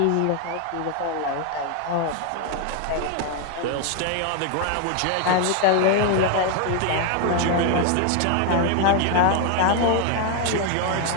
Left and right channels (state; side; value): different; both; correlation 0.01